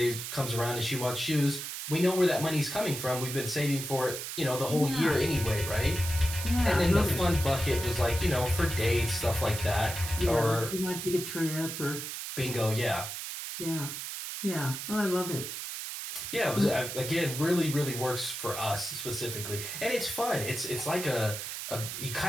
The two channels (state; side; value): noise; right; hiss, 6 dB below the sound